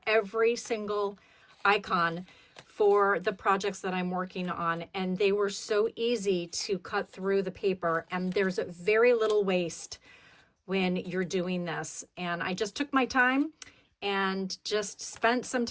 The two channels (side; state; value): both; identical; correlation 1.00